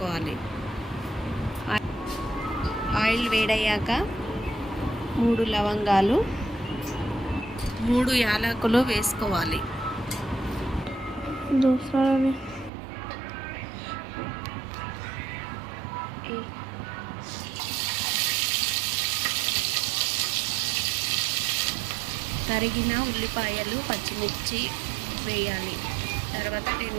ఆయిల్ వేడయ్యాక 3 లవంగాలు 3 యాలకులు వేసుకోవాలి. తరిగిన ఉల్లిపాయలు, పచ్చిమిర్చి వేయాలి. తర్వాత 10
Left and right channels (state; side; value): drops out; left; at 12.7 s